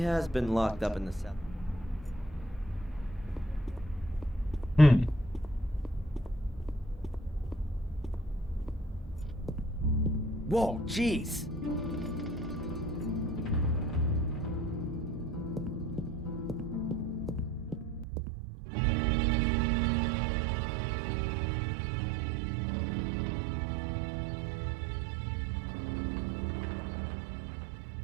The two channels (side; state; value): left; drops out; at 18.1 s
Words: been locked up in the cell. Whoa, jeez!